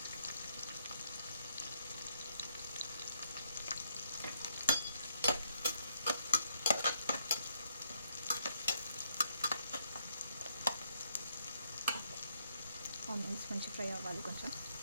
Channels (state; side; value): inverted; both; correlation -0.74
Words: ఆనియన్స్ మంచిగా ఫ్రై అవ్వాలి కొంచెం.